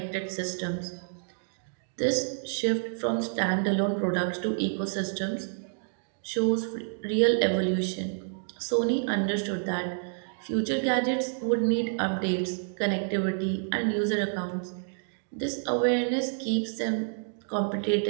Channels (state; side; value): silent; left; digital silence